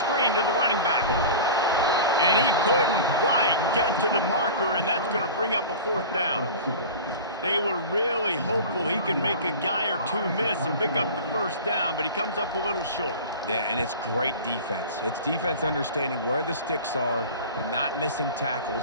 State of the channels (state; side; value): inverted; both; correlation -0.34